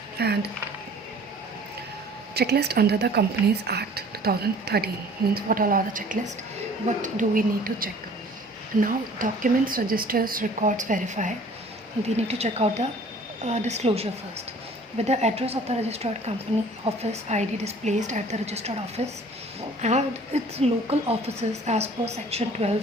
and checklist under the Companies Act 2013 means what all are the checklist, what do we need to check. Now documents, registers, records, verify. We need to check out the disclosure first. With the address of the registered company office ID displayed at the registered office and its local offices as per section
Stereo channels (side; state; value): both; normal; correlation 0.50